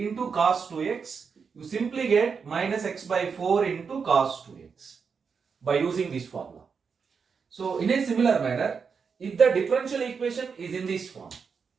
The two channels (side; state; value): left; quieter; 5.8 dB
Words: cos 2x. You simply get minus x by 4 into cos 2x by using this formula. So in a similar manner, if the differential equation is in this form,